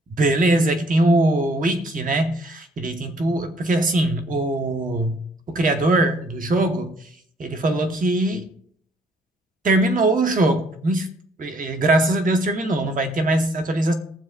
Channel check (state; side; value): normal; both; correlation 0.64